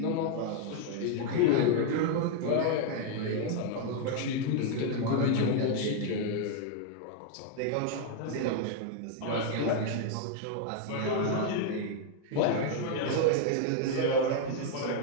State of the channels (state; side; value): different; both; correlation 0.00